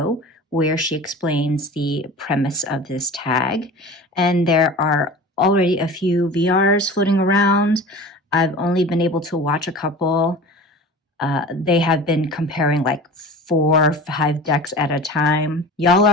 where she explains the premise of this tag. And there are already a few VRs floating around. I've only been able to watch a couple. They have been comparing like 4 or 5 decks at a time. Y'all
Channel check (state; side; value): normal; both; correlation 0.36